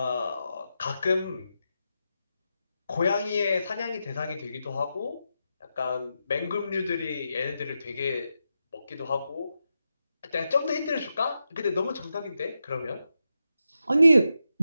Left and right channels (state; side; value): inverted; both; correlation -0.88